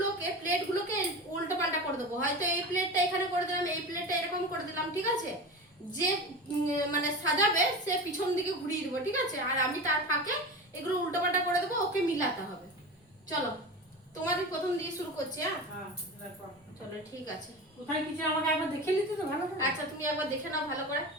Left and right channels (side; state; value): both; normal; correlation 0.28